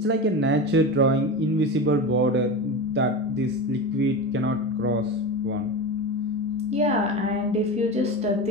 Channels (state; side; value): normal; both; correlation 0.24